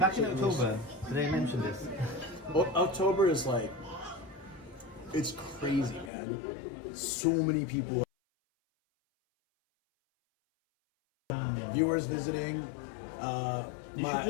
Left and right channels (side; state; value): right; drops out; at 6.1 s